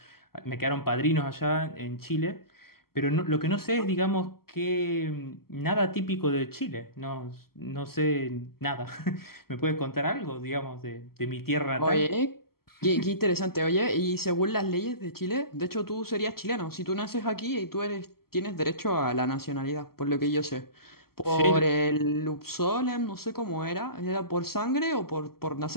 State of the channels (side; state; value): right; late; 0.94 ms